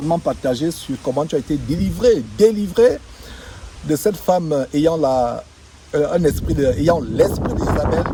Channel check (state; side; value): identical; both; correlation 1.00